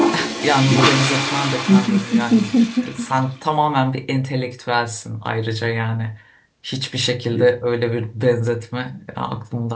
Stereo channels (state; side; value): identical; both; correlation 1.00